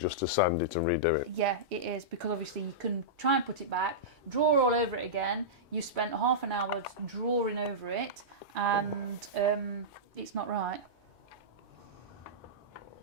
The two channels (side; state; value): both; normal; correlation -0.16